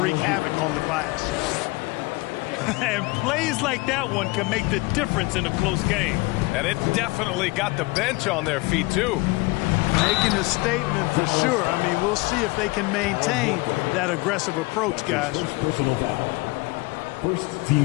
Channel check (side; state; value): right; quieter; 23.8 dB